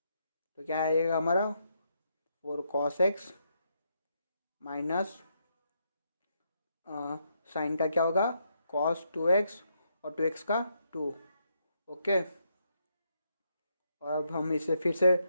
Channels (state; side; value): inverted; both; correlation -0.78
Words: तो क्या आएगा हमारा 4 cos x माइनस साइन का क्या होगा cos 2x और 2x का 2। ओके, और अब हम इसे फिर से